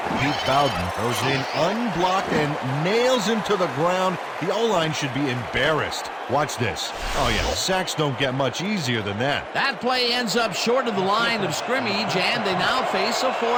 Pete Bowden goes in unblocked and nails him to the ground. The O-line should be embarrassed. Watch this. Oh yeah, sacks don't get much easier than that. That play ends up short of the line of scrimmage, and they now face a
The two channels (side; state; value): both; identical; correlation 1.00